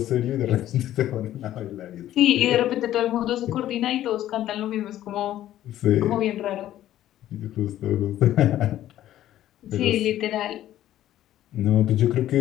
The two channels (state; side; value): quieter; right; 12.9 dB